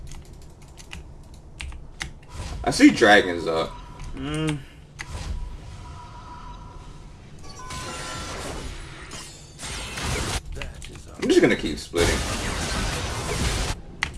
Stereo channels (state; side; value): identical; both; correlation 1.00